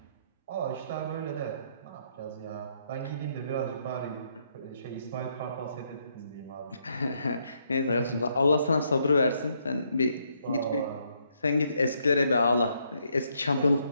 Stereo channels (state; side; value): inverted; both; correlation -0.74